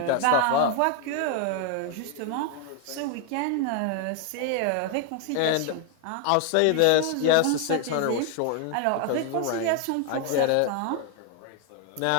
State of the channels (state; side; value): different; both; correlation 0.00